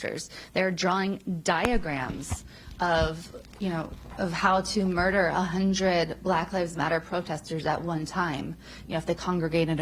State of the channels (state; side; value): identical; both; correlation 1.00